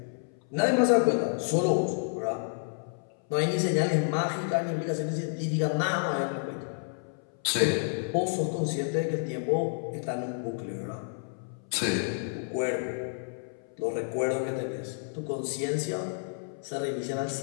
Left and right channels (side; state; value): right; silent; 58 dB below the other